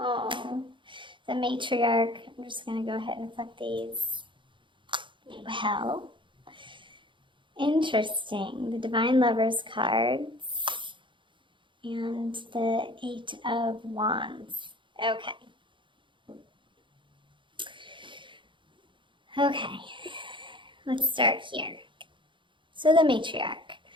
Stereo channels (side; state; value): left; late; 0.24 ms